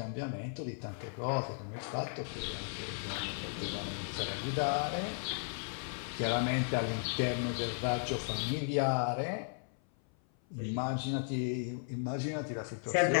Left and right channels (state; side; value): silent; right; 54 dB below the other